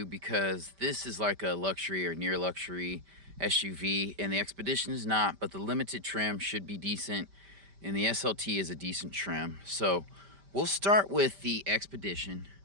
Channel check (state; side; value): late; left; 5.1 ms